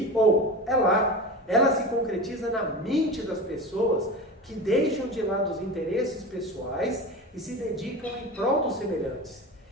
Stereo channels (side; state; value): both; normal; correlation 0.28